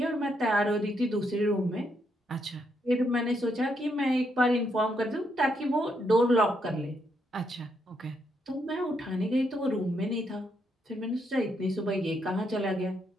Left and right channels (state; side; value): normal; both; correlation 0.77